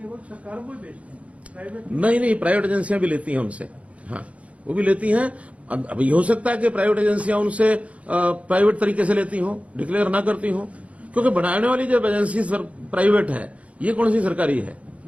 सरकार को ही बेचते हैं, प्राइवेट नहीं, प्राइवेट एजेंसियां भी लेती हैं उनसे। हाँ, वो भी लेती हैं। अब ये हो सकता है कि प्राइवेट एजेंसियां उनसे प्राइवेट तरीके से लेती हों, डिक्लेयर ना करती हों, क्योंकि बनाने वाली जब एजेंसी प्राइवेट है, ये कौन सी सरकारी है?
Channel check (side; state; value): left; late; 0.065 ms